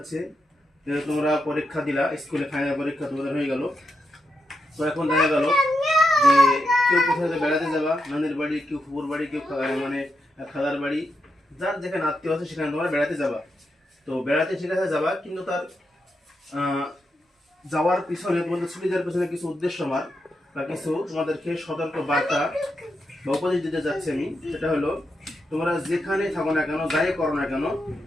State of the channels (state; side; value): normal; both; correlation 0.85